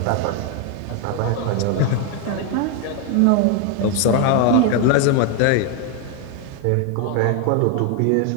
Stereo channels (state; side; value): different; both; correlation 0.01